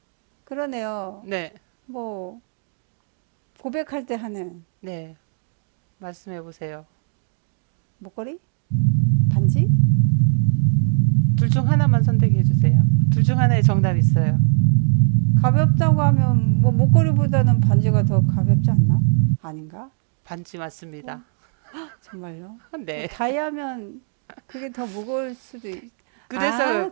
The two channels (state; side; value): silent; left; 65 dB below the other